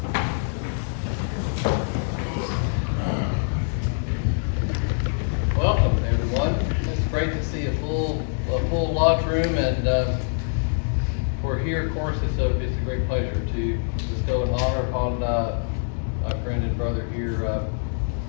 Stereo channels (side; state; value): right; silent; digital silence